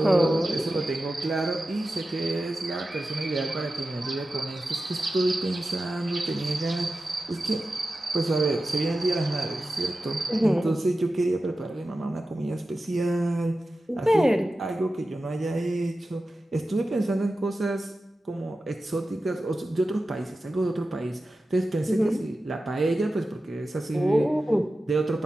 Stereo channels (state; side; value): normal; both; correlation 0.93